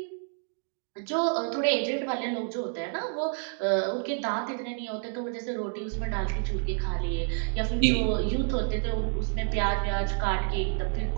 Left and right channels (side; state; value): left; silent; 59 dB below the other